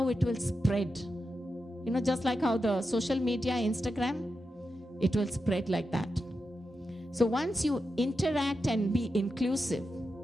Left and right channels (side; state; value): both; normal; correlation 0.89